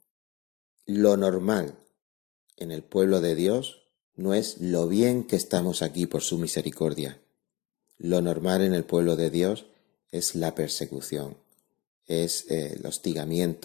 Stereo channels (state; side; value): quieter; right; 22.3 dB